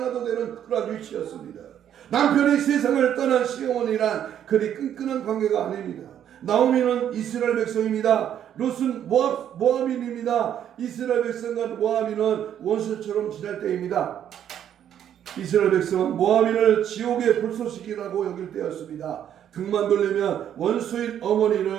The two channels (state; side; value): quieter; left; 10.0 dB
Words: 되는 그런 위치였습니다. 남편이 세상을 떠난 시어머니란 그리 끈끈한 관계가 아닙니다. 나오미는 이스라엘 백성입니다. 롯은 모압인입니다. 이스라엘 백성과 모압인은 원수처럼 지낼 때입니다. 이스라엘 백성은 모압인을 지옥의 불쏘시기라고 여길 때였습니다. 등만 돌리면 원수인